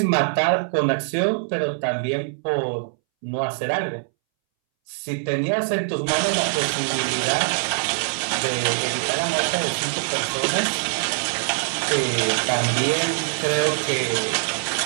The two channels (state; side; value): silent; left; 63 dB below the other